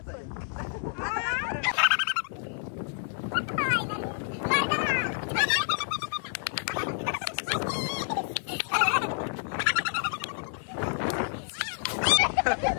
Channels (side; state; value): right; silent; 58 dB below the other